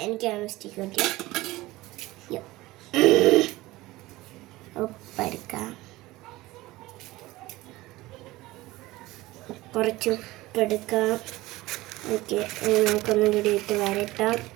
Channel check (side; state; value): left; quieter; 18.8 dB